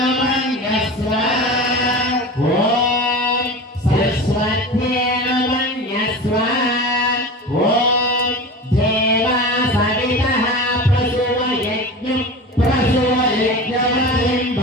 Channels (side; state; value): both; normal; correlation 0.31